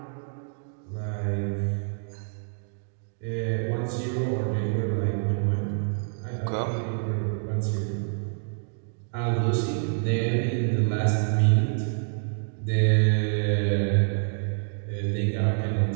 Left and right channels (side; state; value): left; silent; digital silence